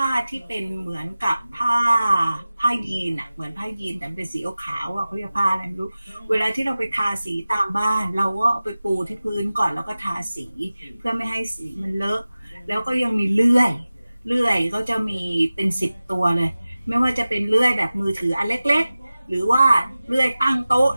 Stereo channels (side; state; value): both; inverted; correlation -0.96